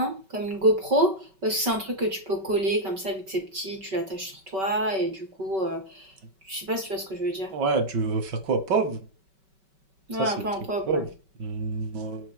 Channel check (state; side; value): late; left; 5.2 ms